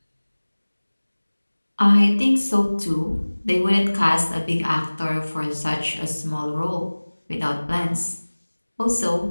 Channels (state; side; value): inverted; both; correlation -1.00